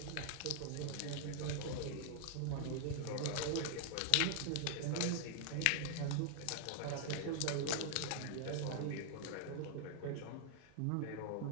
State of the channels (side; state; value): both; different; correlation -0.01